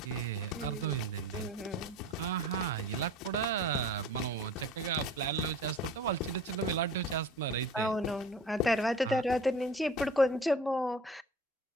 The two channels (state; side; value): normal; both; correlation 0.41